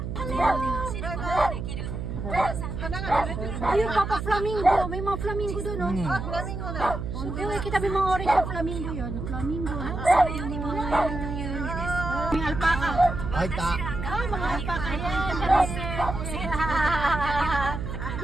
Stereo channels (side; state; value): right; noise; hum, 5 dB below the sound